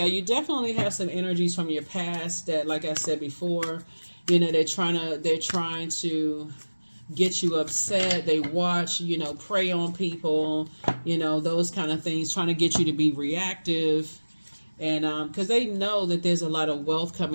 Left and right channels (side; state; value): both; inverted; correlation -1.00